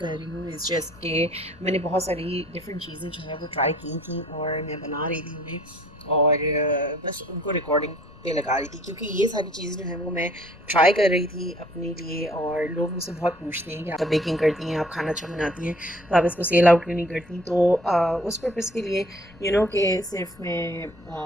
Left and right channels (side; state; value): left; noise; rumble, 24 dB below the sound